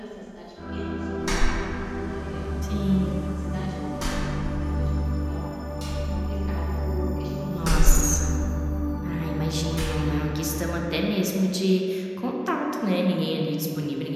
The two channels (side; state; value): both; identical; correlation 1.00